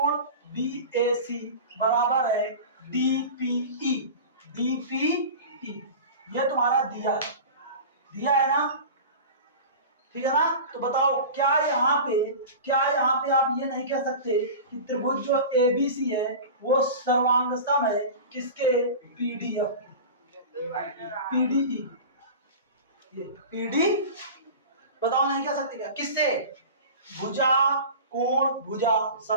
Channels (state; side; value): inverted; both; correlation -0.33